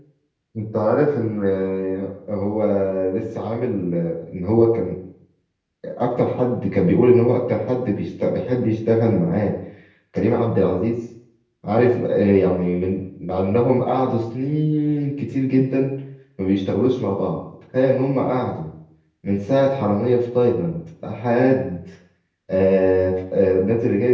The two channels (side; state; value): both; identical; correlation 1.00